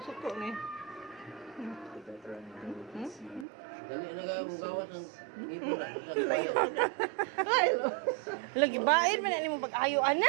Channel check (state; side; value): drops out; left; at 3.5 s